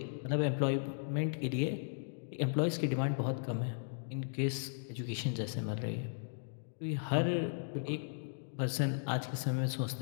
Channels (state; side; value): silent; right; digital silence